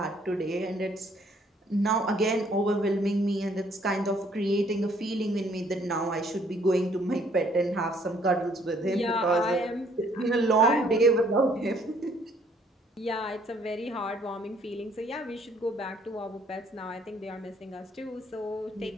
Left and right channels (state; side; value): normal; both; correlation 0.64